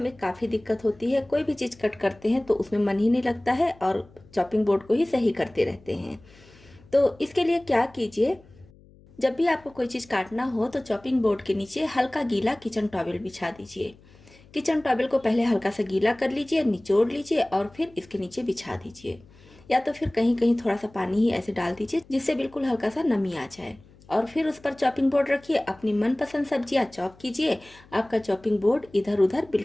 काफ़ी दिक्कत होती है। कोई भी चीज़ कट करते हैं तो उसमें मन ही नहीं लगता है और चॉपिंग बोर्ड को ही सही करते रहते हैं। तो इसके लिए क्या कीजिए, जब भी आपको कोई चीज़ काटना हो तो चॉपिंग बोर्ड के नीचे हल्का गीला किचन टॉवल बिछा दीजिए। किचन टॉवल को पहले हल्का सा गीला कर लीजिए, निचोड़ लीजिए और फिर इसके नीचे बिछा दीजिए, या तो फिर कहीं कहीं थोड़ा सा पानी ही ऐसे डाल दीजिए जिससे बिल्कुल हल्का सा नमी आ जाए। और फिर उस पर चॉपिंग बोर्ड रखिए, अपनी मनपसंद सब्जियां चॉप कीजिए। आपका चॉपिंग बोर्ड इधर उधर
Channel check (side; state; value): left; noise; hum, 26 dB below the sound